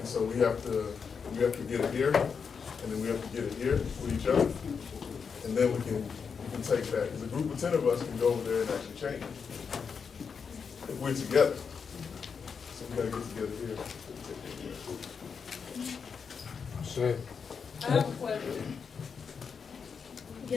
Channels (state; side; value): quieter; right; 6.0 dB